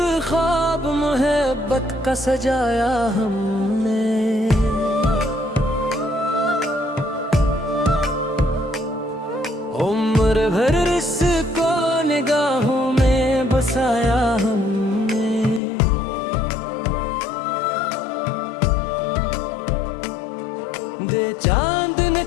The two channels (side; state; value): right; drops out; at 15.6 s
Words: ख्वाब मोहब्बत का सजाया हमने। उम्र भर इसको निगाहों में बसाया हमने। दे चांद